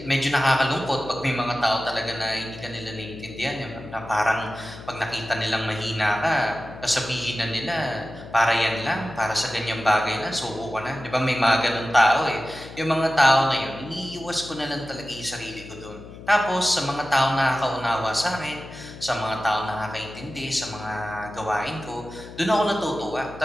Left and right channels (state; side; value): noise; left; hum, 15 dB below the sound